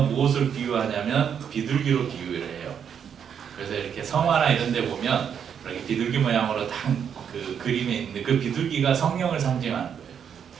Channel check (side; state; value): left; quieter; 7.9 dB